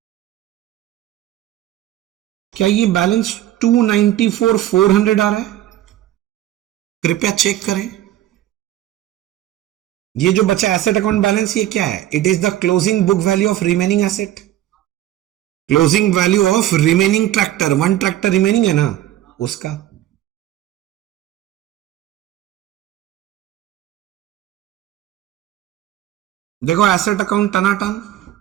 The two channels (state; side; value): quieter; left; 13.1 dB